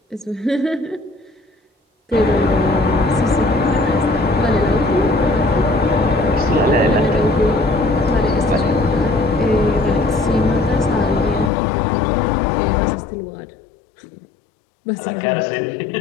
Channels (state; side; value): drops out; right; at 11.5 s